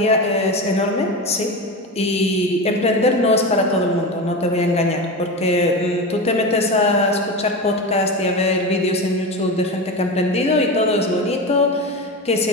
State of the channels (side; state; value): both; normal; correlation 0.23